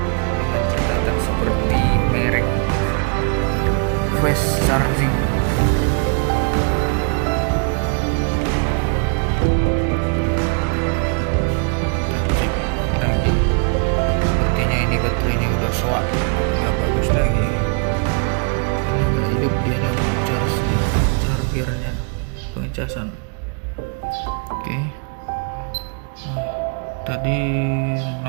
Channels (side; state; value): left; quieter; 37.5 dB